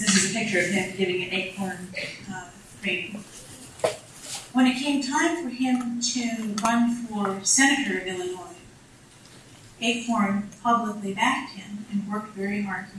is a picture of him giving an Acorn training. When it came time for him to run for senator of Illinois, Acorn publicly backed him and worked very hard for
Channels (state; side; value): identical; both; correlation 1.00